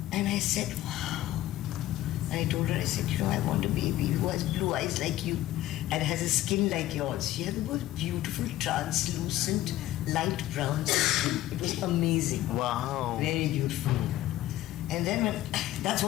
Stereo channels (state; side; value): quieter; right; 14.7 dB